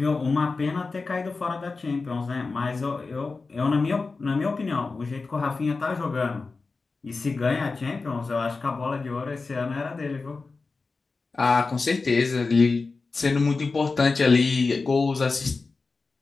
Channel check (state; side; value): quieter; right; 4.1 dB